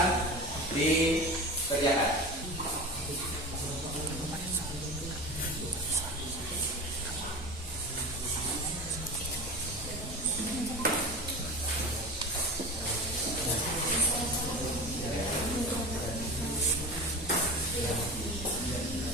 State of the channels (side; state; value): both; normal; correlation 0.31